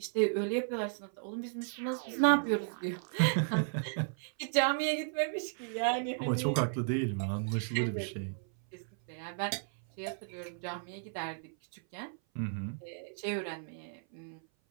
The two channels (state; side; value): silent; left; 55 dB below the other